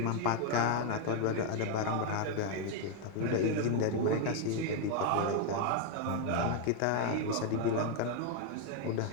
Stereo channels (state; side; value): different; both; correlation 0.01